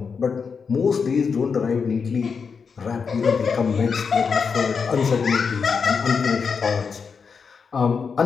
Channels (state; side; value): quieter; right; 5.7 dB